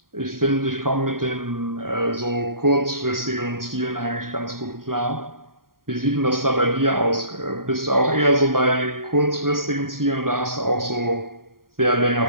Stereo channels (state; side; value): late; left; 0.92 ms